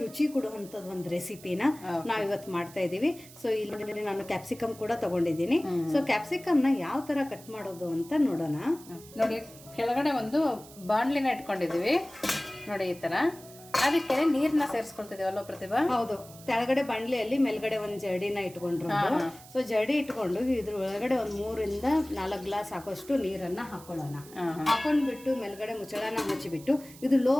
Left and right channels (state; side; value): noise; right; hiss, 20 dB below the sound